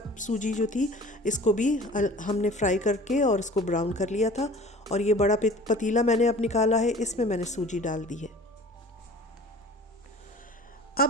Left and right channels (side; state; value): both; normal; correlation 0.44